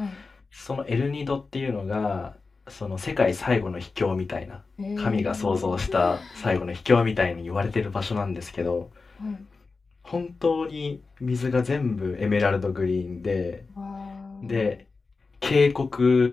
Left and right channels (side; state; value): right; quieter; 4.1 dB